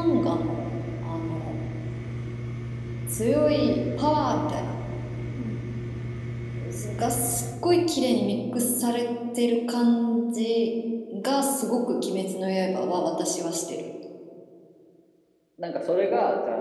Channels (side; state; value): both; identical; correlation 1.00